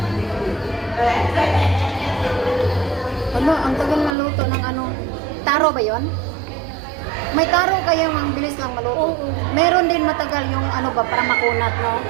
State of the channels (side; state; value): left; drops out; at 4.2 s